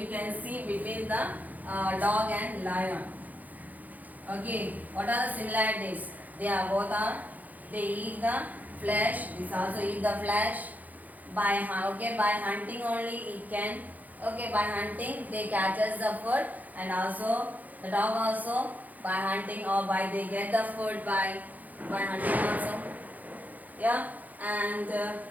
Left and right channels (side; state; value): left; late; 0.080 ms